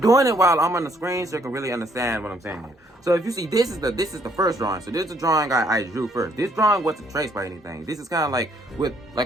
it while I'm on the screen so you can really understand what I'm saying here. So if you see, this is the first drawing. So this is the drawing I drew first. This drawing wasn't traced by anything. This is kind of like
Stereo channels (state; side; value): normal; both; correlation 0.66